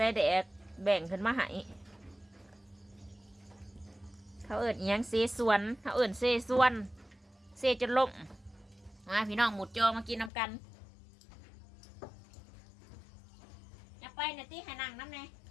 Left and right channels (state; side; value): drops out; right; at 10.3 s